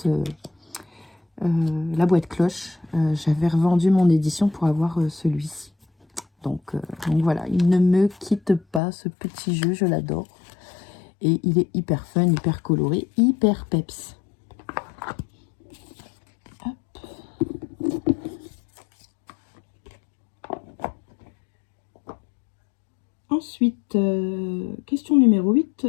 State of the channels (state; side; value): drops out; right; at 8.8 s